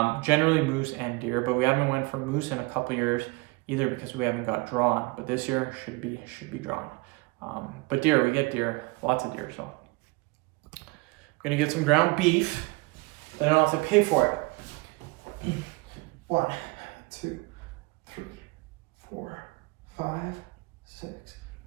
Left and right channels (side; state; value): left; quieter; 25.4 dB